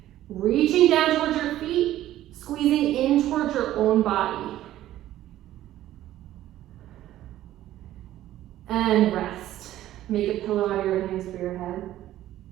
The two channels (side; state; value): left; quieter; 13.6 dB